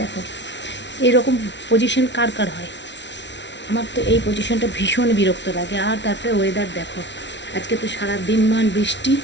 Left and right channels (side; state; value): right; late; 0.51 ms